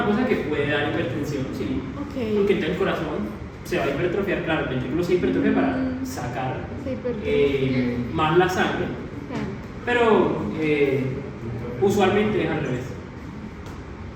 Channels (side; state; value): both; identical; correlation 1.00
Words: cosa que puede dar hipertensión, sí. Ok. Porque entonces el corazón se va a hipertrofiar, claro, el ventrículo se hipertrofia para sacar Se hipertrofia. más la sangre, Claro. pero usualmente es al revés.